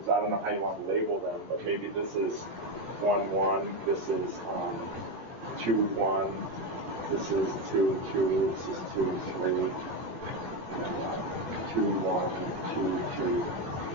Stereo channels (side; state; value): left; late; 18 ms